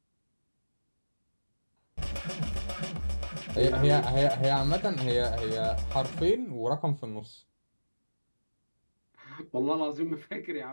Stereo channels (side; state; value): both; inverted; correlation -1.00